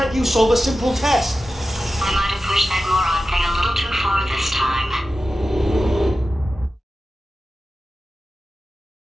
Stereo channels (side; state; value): both; normal; correlation 0.93